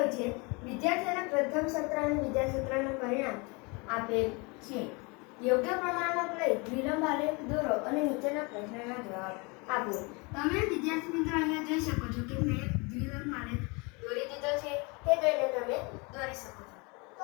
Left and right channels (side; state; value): right; quieter; 29.0 dB